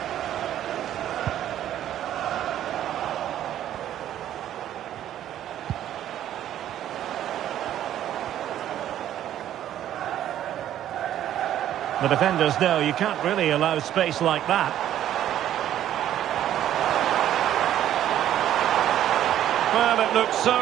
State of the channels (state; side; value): quieter; left; 11.6 dB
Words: The defenders know you can't really allow space like that. Well, it looked